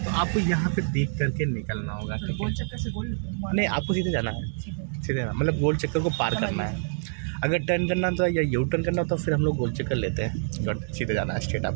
तो आपको यहाँ पे देख करके निकलना होगा। गोल चक्कर से गोल नहीं, आपको सीधे जाना है, सीधे मतलब गोल चक्कर को पार करना है। अगर टर्न करना तो या यू टर्न करना तो फिर हम लोग गोल चक्कर लेते हैं। गट सीधे जाना है स्ट्रेट,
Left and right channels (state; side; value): silent; left; 60 dB below the other